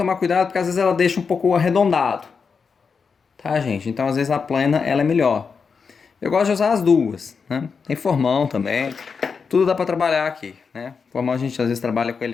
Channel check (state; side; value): quieter; right; 5.5 dB